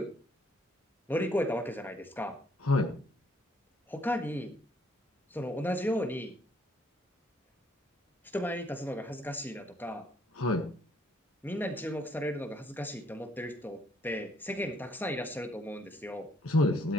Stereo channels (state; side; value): normal; both; correlation 0.67